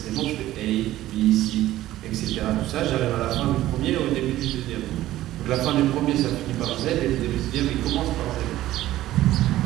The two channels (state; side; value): quieter; left; 14.8 dB